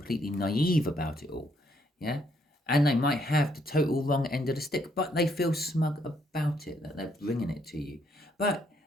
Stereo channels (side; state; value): both; normal; correlation 0.71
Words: naive about it all. Yeah. And they might have the total wrong end of the stick, but they feel smug about it, that they're bringing it to you. But